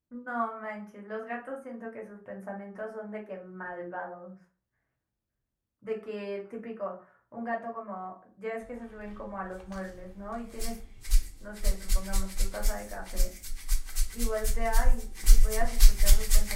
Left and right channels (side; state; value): both; identical; correlation 1.00